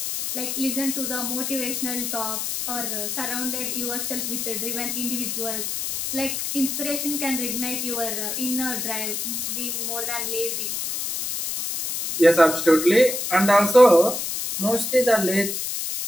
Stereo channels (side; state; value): left; noise; hiss, 3 dB below the sound